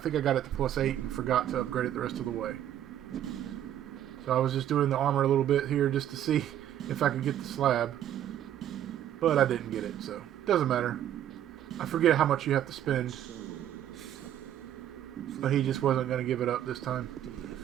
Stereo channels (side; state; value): left; quieter; 11.2 dB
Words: I got it to +8 and forgot to upgrade it the rest of the way. So I was just doing the armor a little bit here just to see if I could get the slab. But I didn't get it, so it doesn't matter. I forget how much you have to spend. But he just wasn't going to give it up this